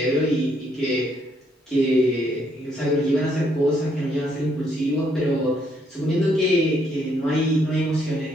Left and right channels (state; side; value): normal; both; correlation 0.71